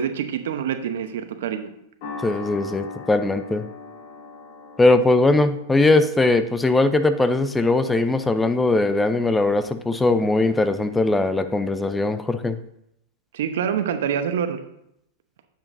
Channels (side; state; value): both; normal; correlation 0.71